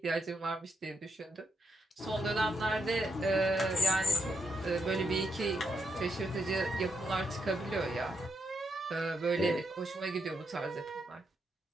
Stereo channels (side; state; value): both; normal; correlation 0.81